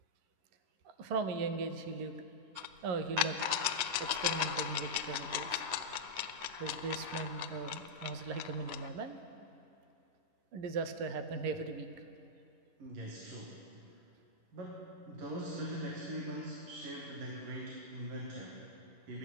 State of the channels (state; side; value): late; left; 10 ms